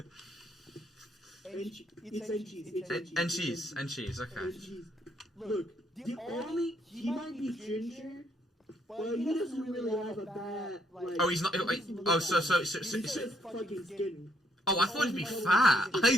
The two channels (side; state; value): both; normal; correlation 0.71